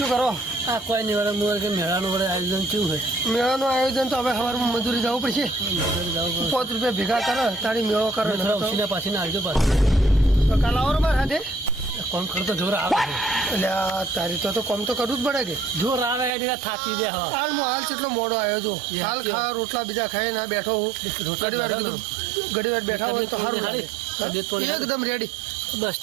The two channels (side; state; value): left; drops out; at 16.3 s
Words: કરો? આ કોઈ નહીં વળે મોર કે મેળાનું વળે આયોજન કેવું હોય? મેળાનું આયોજન તો હવે સવારમાં મજૂરી જવું પડશે. ₹5 ભેગા કરે તારી મેળો કરે ઉછીના પાછી આવજો પાછું. કાલ આવો મારા હાથે કોમ કરતો જોર આવે છે. એટલે તારી તો કોમ તો કરવું જ પડે કે જોર આવે એટલે થાકી દે. હા હાલ કેટલો મોડો આવ્યો જો હાલ ખા રોટલા બીજા ખાઈ ના બેઠો હું ઘડી વાર બેઠા હોય તો સારું લાગે. એકદમ રેડી બસ